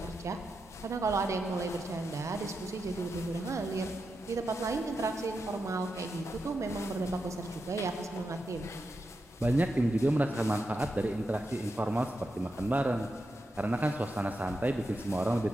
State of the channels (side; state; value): both; normal; correlation 0.87